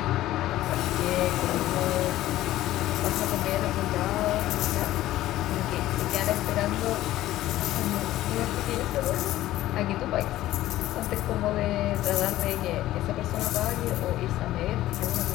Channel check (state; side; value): quieter; right; 14.9 dB